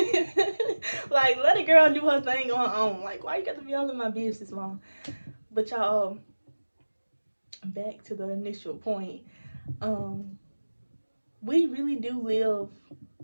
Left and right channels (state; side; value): inverted; both; correlation -1.00